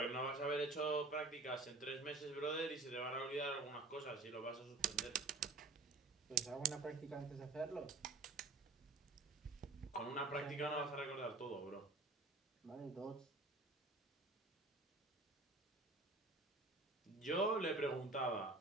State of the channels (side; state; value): left; quieter; 3.3 dB